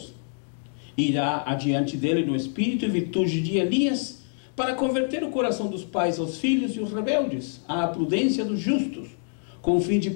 Irá adiante dele no espírito e virtude de Elias, para converter o coração dos pais aos filhos e os rebeldes, à prudência dos justos, com o fim de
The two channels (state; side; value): silent; right; 61 dB below the other